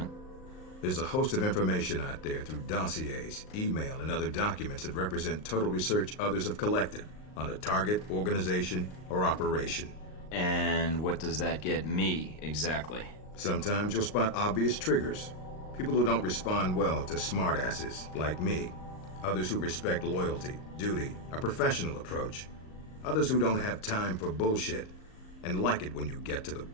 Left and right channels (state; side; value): late; right; 38 ms